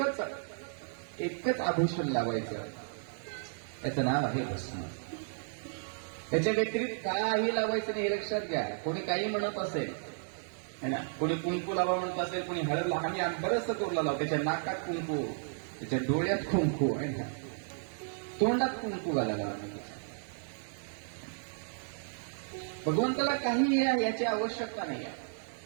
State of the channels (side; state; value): left; silent; digital silence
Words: आभूषण लावायचं. त्याचं नाव आहे भस्म. त्याच्या व्यतिरिक्त काही लावायचं नाही, हे लक्षात घ्या. कोणी काही म्हणत असेल है ना, कोणी कुंकू लावा म्हणत असेल, कोणी हळद लावा. आम्ही बरंचसं करू लावतो. त्याच्या नाकात कुंकू, त्याच्या डोळ्यात कुंकू आहे ना, तोंडात कुंकू घालायला. भगवंताला काही याची आवश्यकता नाही